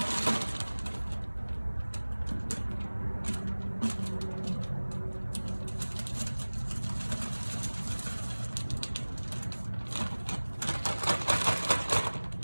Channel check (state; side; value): inverted; both; correlation -1.00